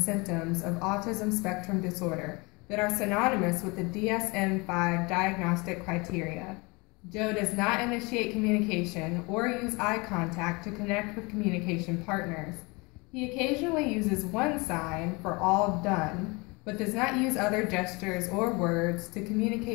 of autism spectrum disorder that are synonymous with the DSM-5 diagnostic criteria. Joe does not initiate communication or use eye contact to connect with communication partners. He occasionally uses one sign for all done, but does not use other gestures or words to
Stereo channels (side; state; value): right; quieter; 26.8 dB